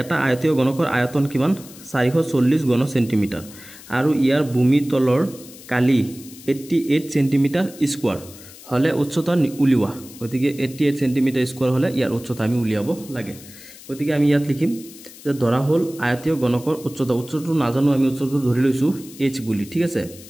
এটা আয়তীয় গণকৰ আয়তন কিমান 440 ঘন সেন্টিমিটাৰ আৰু ইয়াৰ ভূমি তলৰ কালি 88 সেন্টিমিটাৰ স্কয়াৰ হলে উচ্চতা উলিওয়া গতিকে 88 সেন্টিমিটাৰ স্কয়াৰ হলে ইয়াৰ উচ্চতা আমি উলিয়াব লাগে গতিকে আমি ইয়াত লিখিম যে ধৰা হল আয়তীয় গণকৰ উচ্চতাটো নাজানো আমি উচ্চতা ধৰি লৈছো h বুলি ঠিক আছে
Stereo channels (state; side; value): noise; left; hiss, 19 dB below the sound